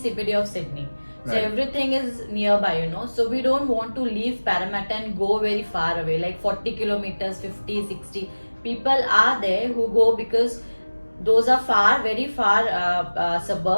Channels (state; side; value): inverted; both; correlation -1.00